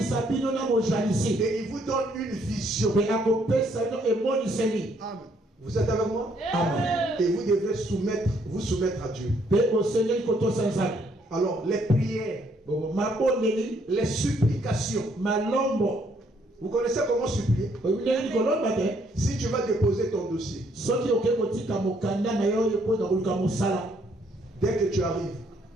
Et il vous donne une vision. Amen. Vous êtes avec moi? Amen. Et vous devrez vous soumettre à Dieu. Alors, les prières, les supplications. Vous connaissez comment supplier? Si tu vas déposer ton dossier, dès que tu arrives,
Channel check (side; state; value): both; normal; correlation 0.69